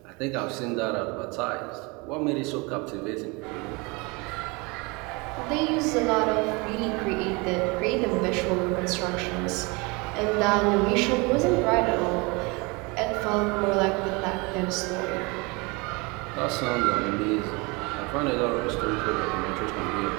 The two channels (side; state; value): left; quieter; 27.5 dB